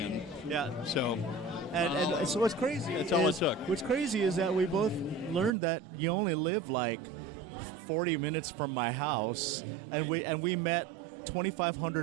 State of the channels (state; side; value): drops out; left; at 5.6 s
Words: Yeah. So, And so what's crazy That's all it is, took. what's crazy is that we both learned that you only live like 40 minutes from my house, Right. and we met